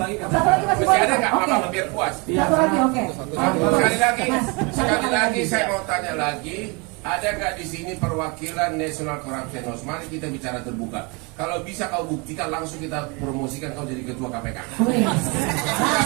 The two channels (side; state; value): left; quieter; 29.9 dB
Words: kan? Satu lagi masih Masih boleh. ada nggak Oke. apa-apa biar puas? Iya, Satu lagi oke. Sekali lagi saya mau tanya lagi, ada nggak di sini perwakilan National Corruption Watch? Mari kita bicara terbuka. Kalau bisa kau buktikan langsung kita promosikan kau jadi ketua KPK. Boleh.